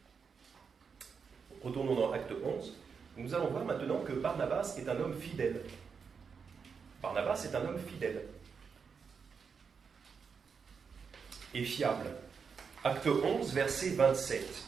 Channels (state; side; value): quieter; left; 5.9 dB